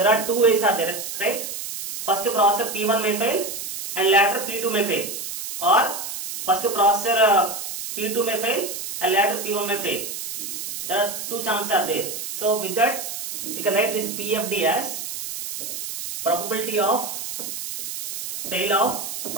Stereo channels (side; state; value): right; noise; hiss, 6 dB below the sound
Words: are two ways are there, right? First processor P1 may fail and later P2 may fail, or first processor P2 may fail and later P1 may fail. There are two chances are there. So with that, you can write this PFD as probability of fail of